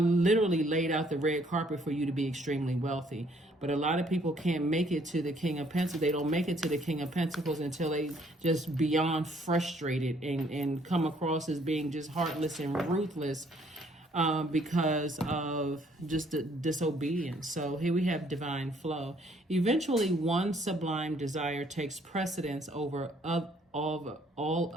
laid out the red carpet for you to be extremely wealthy. But a lot of people can't make it to the King of Pentacles. They don't make it to the King of Pentacles until they just beyond frustrated and come across as being just heartless and ruthless, because of just the disobedience. So here we have divine flow. Eventually, one sublime desire takes precedence over all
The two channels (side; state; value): both; normal; correlation 0.64